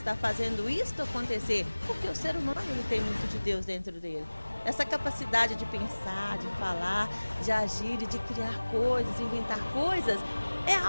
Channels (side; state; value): both; inverted; correlation -1.00